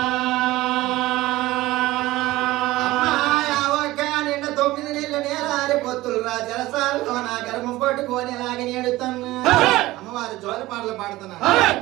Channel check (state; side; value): quieter; left; 18.0 dB